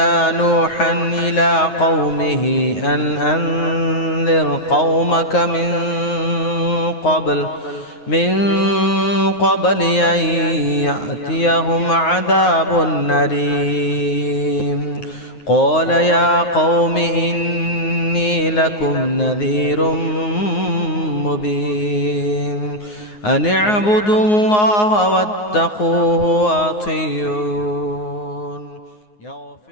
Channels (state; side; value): late; right; 9.5 ms